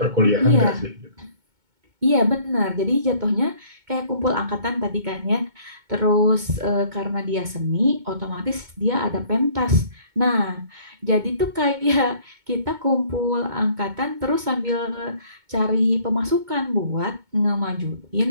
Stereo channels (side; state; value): left; late; 2.2 ms